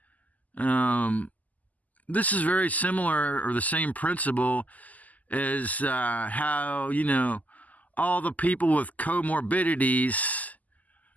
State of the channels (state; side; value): late; right; 0.078 ms